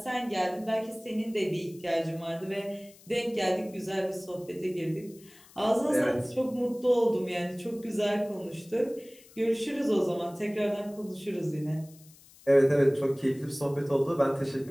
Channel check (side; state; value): left; noise; hiss, 24 dB below the sound